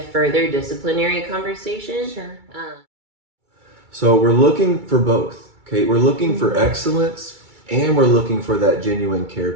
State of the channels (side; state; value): left; late; 2.3 ms